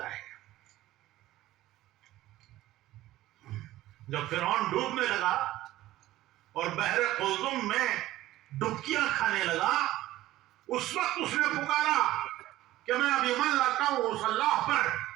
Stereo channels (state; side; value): quieter; left; 15.5 dB